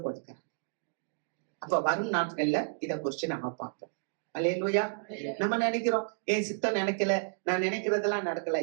கொடுக்கிறார். அப்ப வரும் நாட்கள்ல இத குறிச்சு நம்ம பார்ப்போம். அல்லேலூயா. நம்ம நினைக்கிறோம், என் சித்தம் நினைக்கல, நான் நினைக்கிறதெல்லாம் நடக்கல.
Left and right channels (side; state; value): left; silent; digital silence